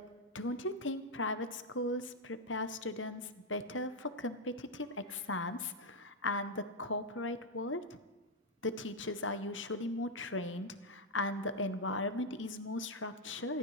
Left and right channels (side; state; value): both; normal; correlation 0.00